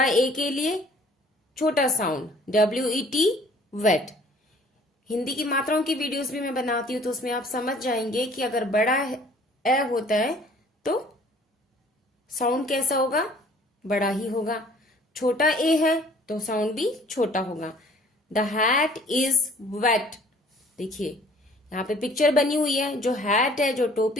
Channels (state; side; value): normal; both; correlation 0.55